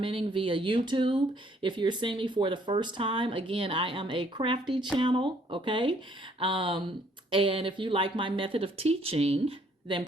via YouTube. If you're seeing me for the first time, again, I am a crafty channel, okay? And if you like my method of teaching, then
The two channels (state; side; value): normal; both; correlation 0.64